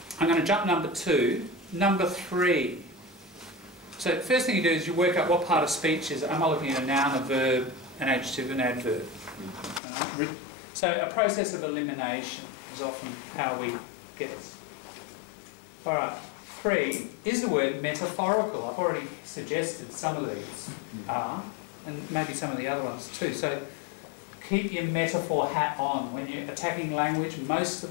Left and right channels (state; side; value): drops out; right; at 9.8 s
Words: I'm going to jump number 2. Number 3. So the first thing you do is you work out what part of speech is it. Am I looking at a noun, a verb, an adjective, an adverb? So a process of elimination is often how we get this. All right. 3, is the word metaphorical? I've already suggested some of these are, and maybe some of the other ones too. So keep your metaphor hat on. When you're attacking language, most of